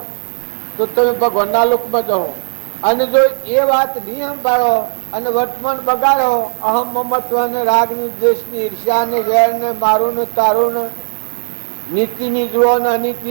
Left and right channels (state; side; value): silent; left; digital silence